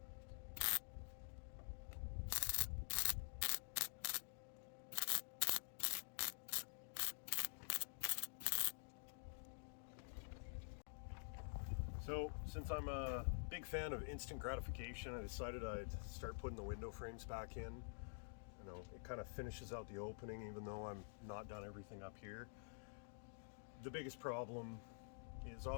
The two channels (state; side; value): silent; right; digital silence